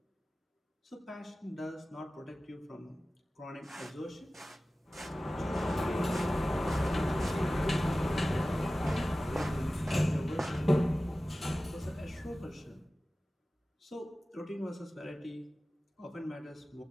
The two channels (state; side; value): normal; both; correlation 0.96